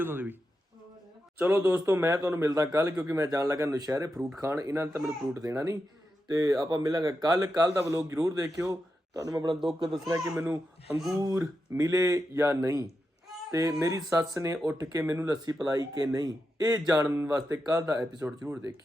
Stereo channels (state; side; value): normal; both; correlation 0.88